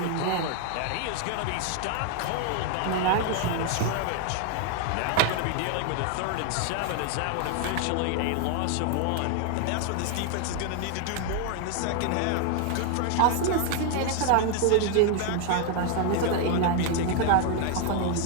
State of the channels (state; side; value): different; both; correlation 0.00